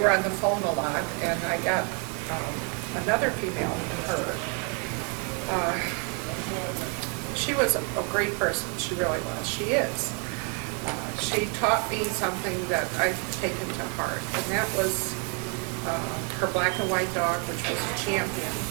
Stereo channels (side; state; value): left; quieter; 33.4 dB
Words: on the phone a lot, and I got another female from her. She was a great person. She really was. She is. She taught me something that I've taken to heart, and that was her black and white dog, which was a champion.